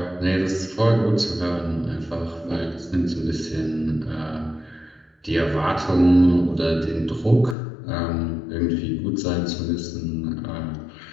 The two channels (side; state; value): right; drops out; at 7.6 s